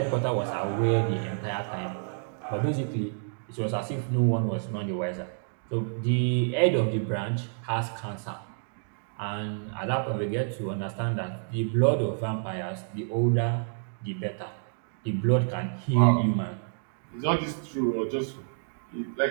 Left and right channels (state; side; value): silent; left; digital silence